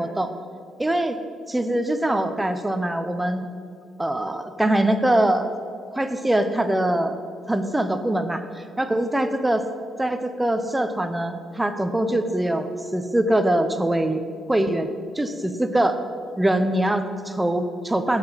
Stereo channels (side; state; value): both; normal; correlation 0.91